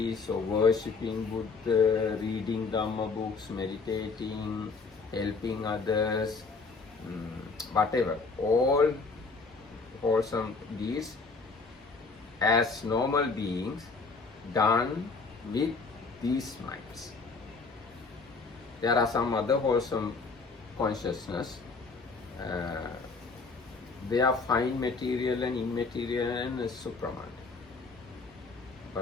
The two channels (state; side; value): quieter; right; 4.3 dB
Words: or worshipping Buddha, reading Dhamma books, meditating, helping others, whatever, all wholesome deeds as normal beings done with these minds. There are some other wholesome consciousness. They are fine material and immaterial and supraman.